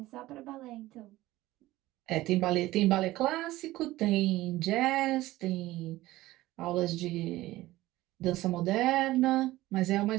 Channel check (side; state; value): left; quieter; 17.2 dB